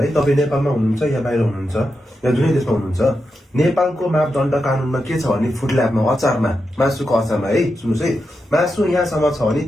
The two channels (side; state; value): both; normal; correlation 0.87